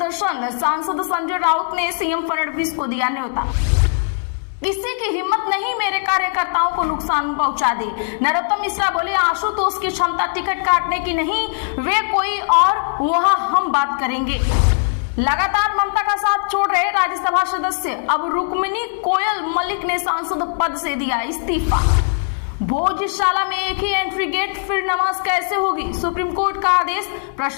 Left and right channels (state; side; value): silent; right; 61 dB below the other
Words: सांसद संजय राउत ने सीएम फडणवीस को दिया न्योता। किसी की हिम्मत नहीं मेरे कार्यकर्ताओं को नुकसान पहुंचा दे, नरोत्तम मिश्रा बोले आशुतोष की क्षमता टिकट काटने की नहीं, वे कोई और, वहां हम बात करेंगे। लगातार ममता का साथ छोड़ रहे राज्यसभा सदस्य, अब रुक्मिणी कोयल मलिक ने सांसद पद से दिया इस्तीफा। भोजशाला में एक ही एंट्री गेट, फिर नमाज कैसे होगी, सुप्रीम कोर्ट का आदेश,